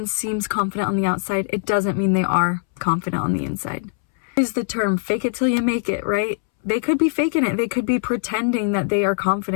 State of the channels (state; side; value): silent; right; 65 dB below the other